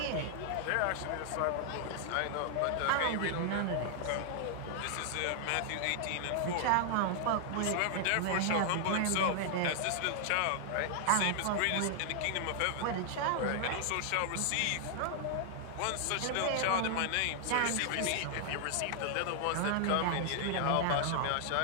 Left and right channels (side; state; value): both; different; correlation 0.00